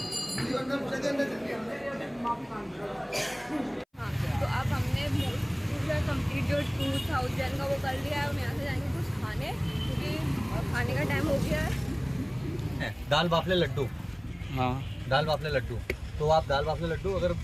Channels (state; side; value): identical; both; correlation 1.00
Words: हाँ तो अब हमने पूरा कंप्लीट जो 2000 का वो कर लिया है। हम यहाँ से जाएंगे कुछ खाने, क्योंकि खाने का टाइम हो गया है। दाल बाफले लड्डू, हाँ दाल बाफले लड्डू, तो आप दाल बाफले लड्डू अगर